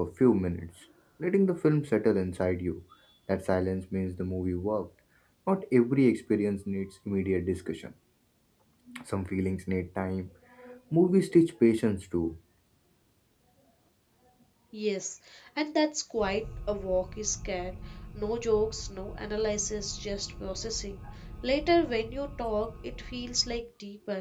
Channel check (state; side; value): identical; both; correlation 1.00